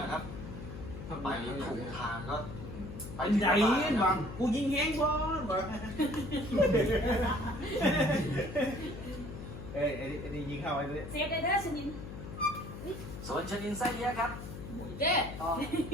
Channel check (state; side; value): noise; left; hum, 10 dB below the sound